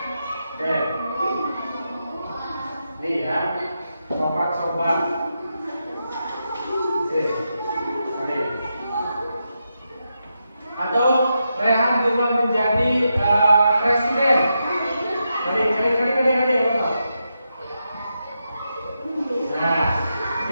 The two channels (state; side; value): inverted; both; correlation -0.86